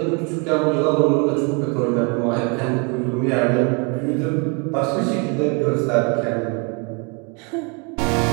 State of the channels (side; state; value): left; quieter; 33.2 dB